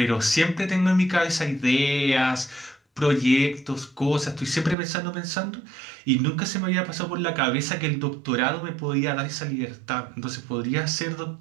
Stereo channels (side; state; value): left; drops out; at 4.8 s